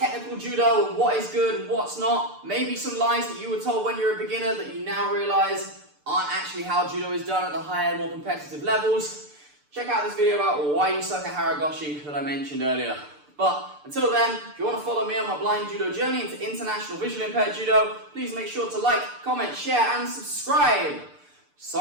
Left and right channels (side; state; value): left; late; 6.8 ms